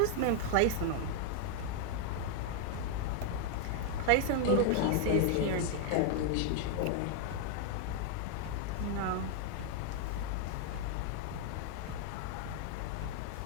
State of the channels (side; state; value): both; different; correlation 0.00